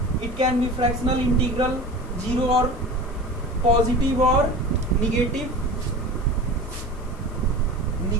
It can be fractional, integral, zero और पॉजिटिव और निगेटिव,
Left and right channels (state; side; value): noise; left; hiss, 27 dB below the sound